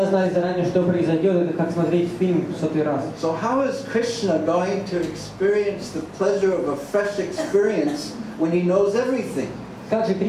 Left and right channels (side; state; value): both; identical; correlation 1.00